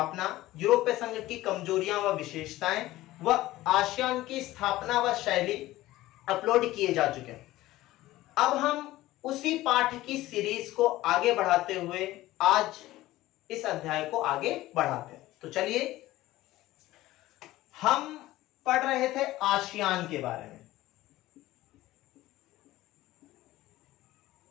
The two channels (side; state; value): right; quieter; 16.6 dB